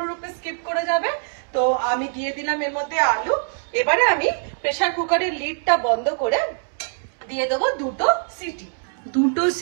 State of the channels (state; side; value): silent; left; digital silence